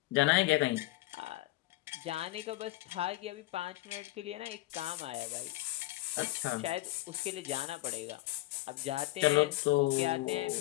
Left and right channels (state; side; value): quieter; right; 18.3 dB